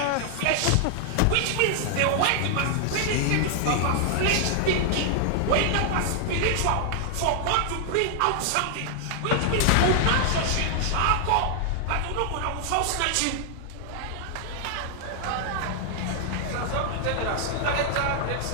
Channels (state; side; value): different; both; correlation 0.00